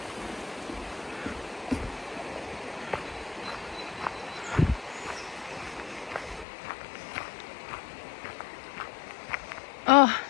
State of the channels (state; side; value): drops out; right; at 6.5 s